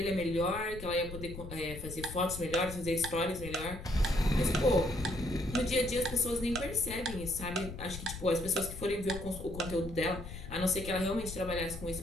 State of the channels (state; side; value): noise; left; rumble, 11 dB below the sound